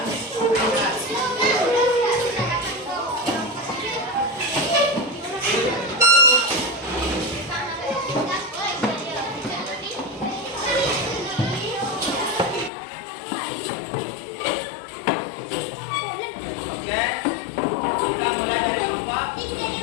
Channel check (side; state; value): right; drops out; at 12.7 s